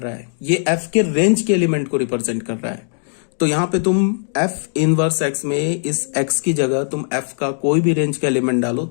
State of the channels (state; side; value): silent; right; digital silence